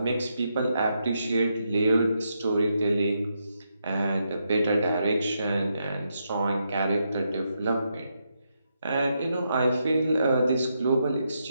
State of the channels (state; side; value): inverted; both; correlation -0.82